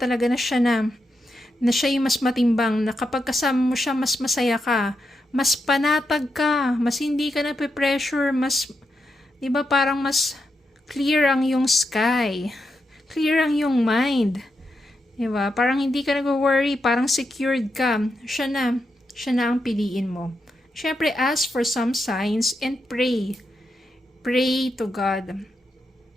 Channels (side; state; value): both; normal; correlation 0.85